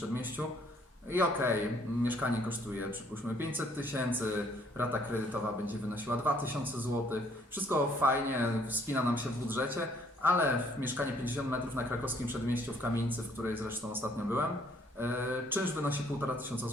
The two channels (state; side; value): normal; both; correlation 0.63